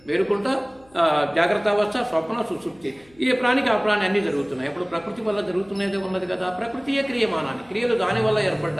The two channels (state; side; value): noise; left; hum, 29 dB below the sound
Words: మేలుకుంటా జాగ్రత్త అవస్థ, స్వప్న, సుషుప్తి, ఏ ప్రాణికి ఆ ప్రాణి అన్నీ జరుగుతున్నాయి. ఇప్పుడు ప్రకృతి వల్ల జరుగుతున్నదే ఉన్నది కదా. ప్రకృతియే క్రియమానాన్ని, క్రియలు దాని వల్ల